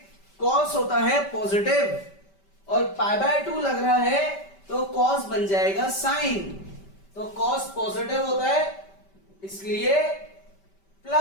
cos होता है पॉजिटिव और पाई बाय 2 लग रहा है तो cos बन जाएगा साइन। तो cos पॉजिटिव होता है इसलिए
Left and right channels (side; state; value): right; late; 5.1 ms